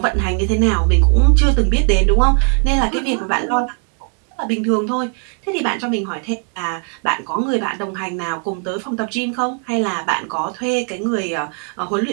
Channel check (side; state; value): left; quieter; 39.0 dB